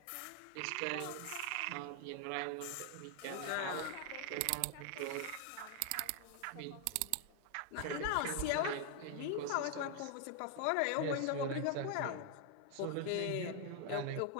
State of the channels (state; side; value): different; both; correlation 0.00